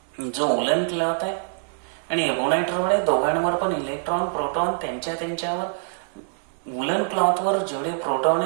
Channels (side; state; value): left; silent; digital silence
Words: जो वुलन क्लॉथ आहे आणि एबोनाइट रॉड आहे, दोघांवर पण इलेक्ट्रॉन प्रोटॉन त्यांच्यावर वुलन क्लॉथवर जेवढे प्रोटॉन